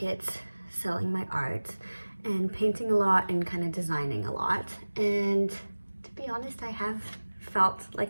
selling my art, and painting a lot and kind of designing a lot. And to be honest, I have felt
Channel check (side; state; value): both; inverted; correlation -1.00